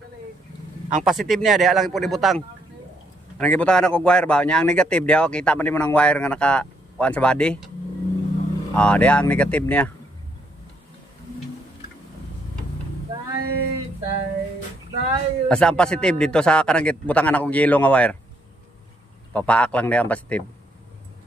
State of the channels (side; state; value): both; normal; correlation 0.73